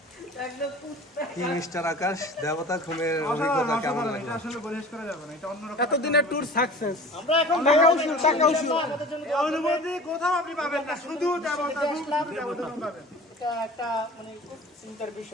কি মিস্টার আকাশ, দেবতা খুমের অভিজ্ঞতা কেমন লাগলো? আসলে পরিবেশ করা যাবে না, এটা অন্যরকম। এতদিনের ট্যুর সাকসেস। আমরা এখন অনুভূতি কোথাও আপনি পাবেন না, শুধু দেবতা পাবেন। এটা একটা মানে খুব চিন্তার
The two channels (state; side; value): normal; both; correlation 0.40